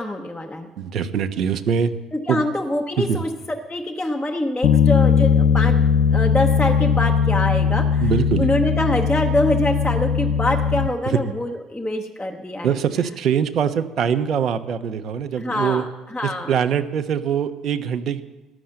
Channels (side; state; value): both; normal; correlation 0.50